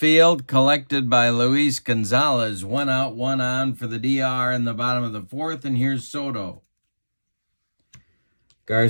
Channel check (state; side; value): inverted; both; correlation -1.00